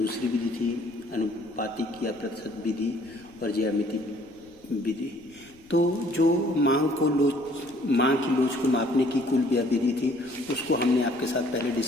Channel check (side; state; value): left; noise; rumble, 27 dB below the sound